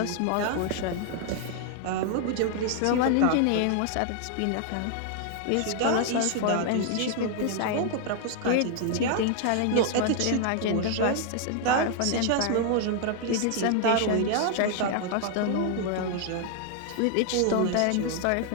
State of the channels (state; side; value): different; both; correlation 0.00